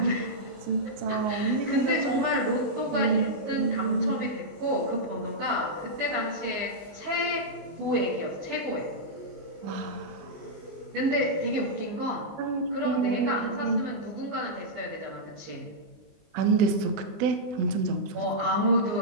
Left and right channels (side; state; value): left; late; 19 ms